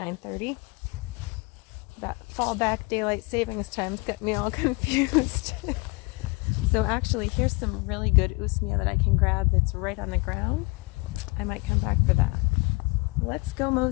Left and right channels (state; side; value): quieter; right; 27.3 dB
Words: That fallback daylight savings time's got me all confused. So actually, here's some really good usmia that I can grab that's right on the ground. I might come back for that. Let's go